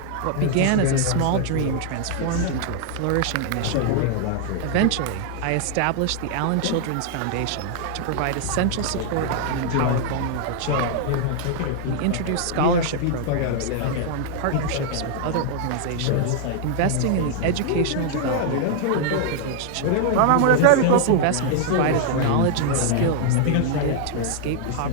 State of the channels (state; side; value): different; both; correlation -0.01